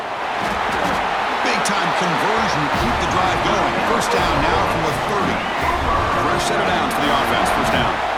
Big-time conversion to keep the drive going. First down now from the 30. Fresh set of downs for the offense. First down.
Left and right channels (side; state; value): both; identical; correlation 1.00